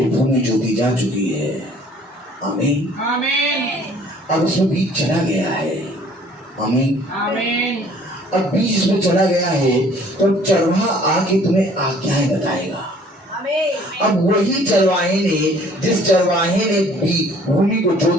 भूमि जोती जा चुकी है। आमीन, आमीन। अब उसमें बीज चला गया है। आमीन, आमीन। अब बीज इसमें चला गया है तो चरवाहा आके तुम्हें आज्ञाएं बताएगा। अब वही चरवाहे ने, जिस चरवाहे ने भूमि को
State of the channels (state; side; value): normal; both; correlation 0.56